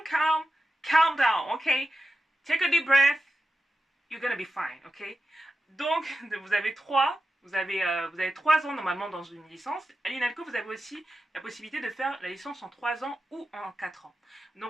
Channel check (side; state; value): both; normal; correlation 0.91